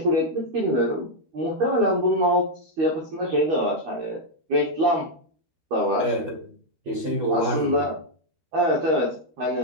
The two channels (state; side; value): late; left; 13 ms